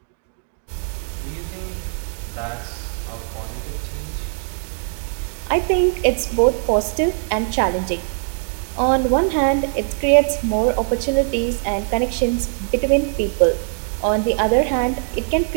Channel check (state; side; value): silent; left; digital silence